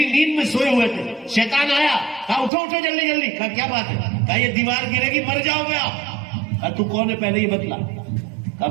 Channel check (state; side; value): drops out; left; at 2.5 s